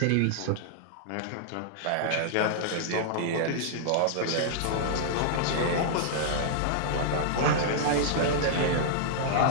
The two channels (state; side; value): different; both; correlation -0.01